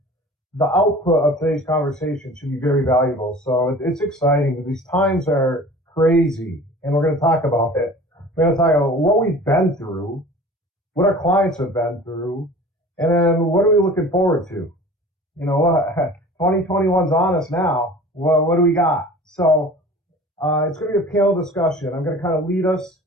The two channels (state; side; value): normal; both; correlation 0.43